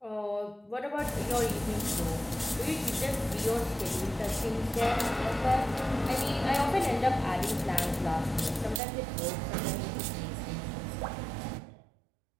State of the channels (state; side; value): drops out; left; at 8.8 s